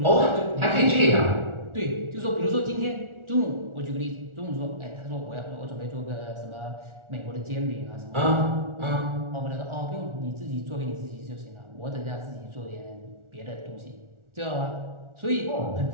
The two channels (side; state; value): left; late; 1.4 ms